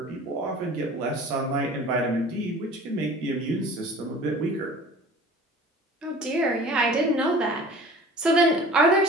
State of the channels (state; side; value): normal; both; correlation 0.43